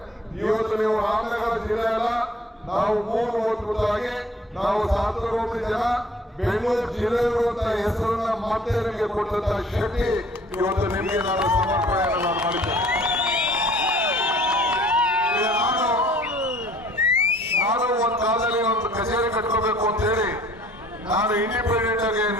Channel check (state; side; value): normal; both; correlation 0.54